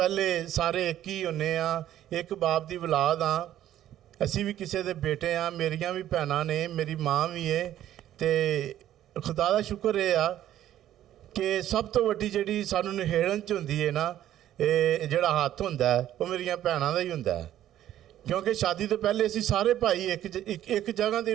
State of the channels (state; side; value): quieter; left; 12.2 dB